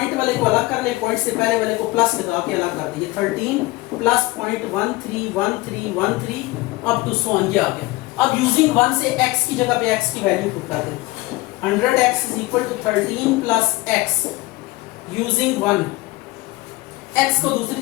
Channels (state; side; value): quieter; right; 21.0 dB